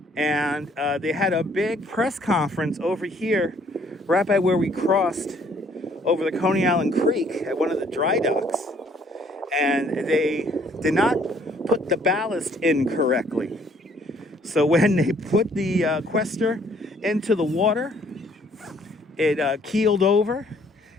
And they had a big press conference over here, right by where we crossed over the Coney Island Creek at one of the dry docks. And they did not put the ballast in correctly. So when they put the quester into the water, it keeled over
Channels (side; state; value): both; normal; correlation 0.62